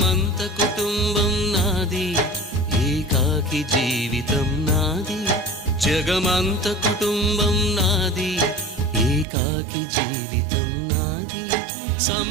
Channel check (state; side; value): drops out; left; at 9.2 s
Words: కుటుంబం నాది, ఏకాకి జీవితం నాది. జగమంత కుటుంబం నాది, ఏకాకి జీవితం నాది.